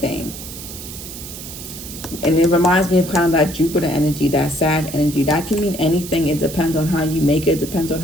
And it reminds me of kind of that Jupiter energy, that Sag energy. That can mean anything. It depends on how you make it. It depends on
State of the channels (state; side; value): noise; right; hiss, 11 dB below the sound